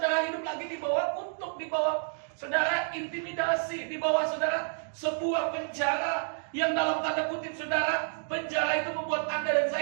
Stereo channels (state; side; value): silent; left; digital silence